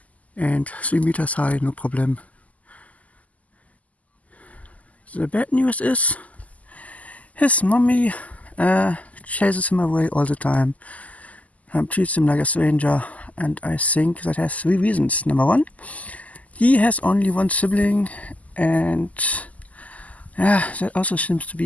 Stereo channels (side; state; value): right; late; 0.073 ms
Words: And 3 meters high, no problem. The bad news is his mommy chases him away all the time, treats him like a stranger, and I think that has 3 reasons. Number 1, he has only 1 sibling, and that also seems to